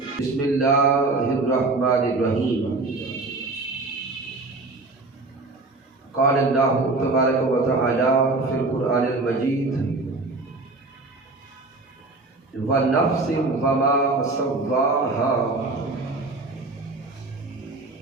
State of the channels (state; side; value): quieter; left; 3.3 dB